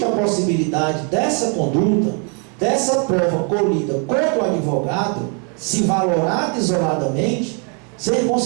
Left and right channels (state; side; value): quieter; left; 37.8 dB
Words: a possibilidade dessa conduta, dessa prova colhida contra o advogado, se valorada isoladamente, ser